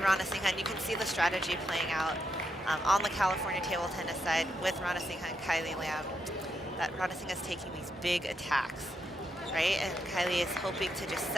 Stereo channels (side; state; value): both; normal; correlation 0.82